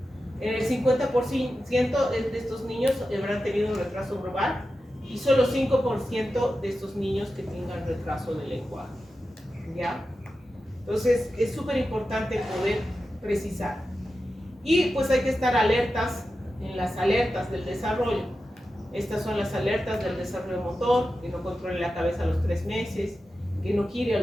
En el 50% de estos niños habrán tenido un retraso global y solo 5% de estos niños que tengan retraso de lenguaje, ¿ya? Entonces es súper importante poder precisar. Y pues hay que estar alertas en las alertas del desarrollo. Estas son las alertas del desarrollo motor, que no controle la cabeza a los 3 meses, que no gire a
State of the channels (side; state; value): both; normal; correlation 0.92